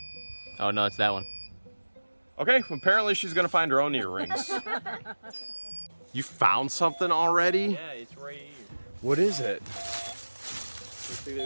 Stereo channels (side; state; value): both; inverted; correlation -1.00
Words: Oh no, it's that one. Okay. Well, apparently she's gonna find her own earrings. You found something already? Yeah, it's right here. What is it? Looks like